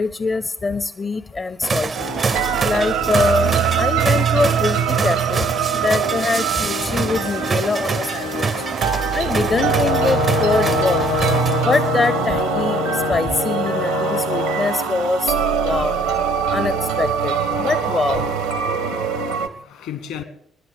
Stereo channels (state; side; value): normal; both; correlation 0.62